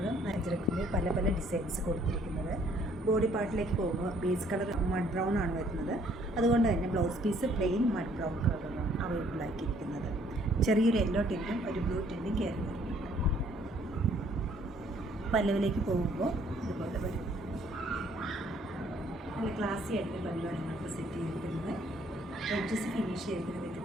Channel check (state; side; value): normal; both; correlation 0.63